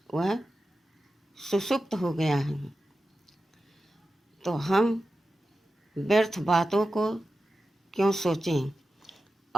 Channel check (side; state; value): both; normal; correlation 0.92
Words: वह सुसुप्त हो गया है। तो हम व्यर्थ बातों को क्यों सोचें